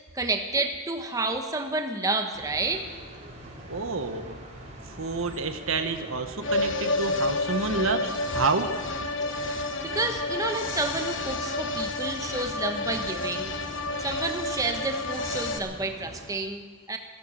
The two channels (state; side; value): normal; both; correlation -0.11